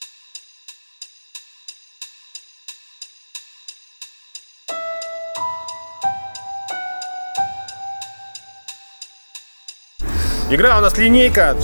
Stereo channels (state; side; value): inverted; both; correlation -1.00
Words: Игра у нас линейка,